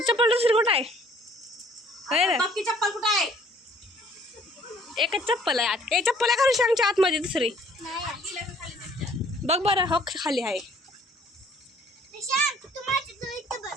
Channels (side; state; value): both; normal; correlation 0.58